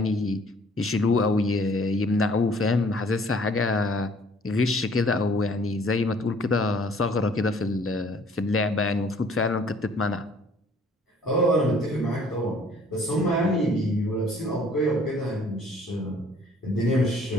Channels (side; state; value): both; normal; correlation 0.57